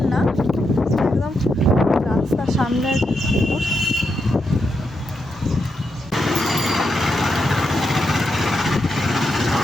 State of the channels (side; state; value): both; normal; correlation 0.84